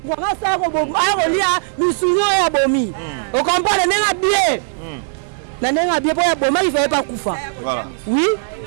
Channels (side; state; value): left; silent; digital silence